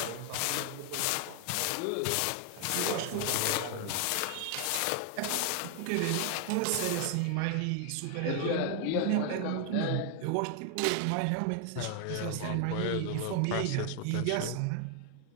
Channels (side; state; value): both; different; correlation 0.00